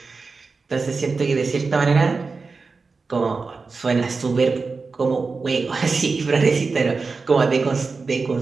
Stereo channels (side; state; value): left; quieter; 4.3 dB